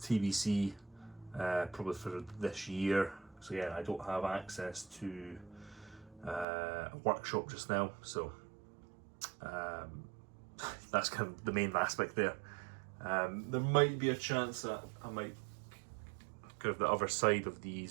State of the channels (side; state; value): left; drops out; at 6.5 s